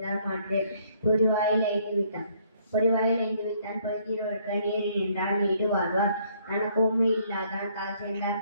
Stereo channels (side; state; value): both; inverted; correlation -0.65